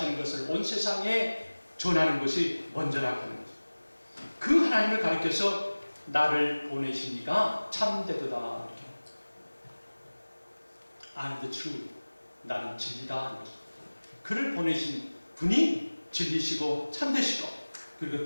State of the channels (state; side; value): inverted; both; correlation -1.00